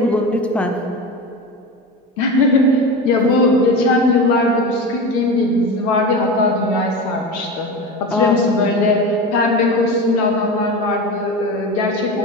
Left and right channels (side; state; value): both; normal; correlation 0.25